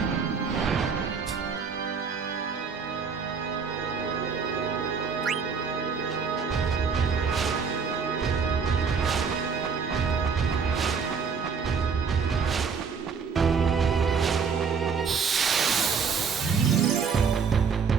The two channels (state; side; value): quieter; left; 5.9 dB